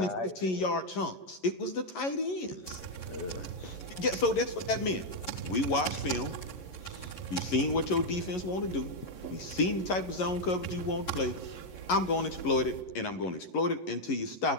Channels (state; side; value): late; right; 11 ms